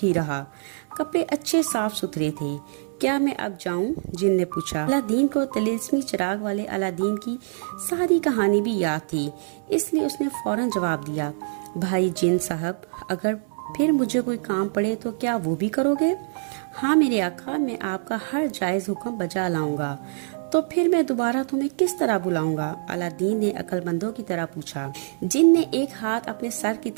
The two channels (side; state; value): left; silent; 62 dB below the other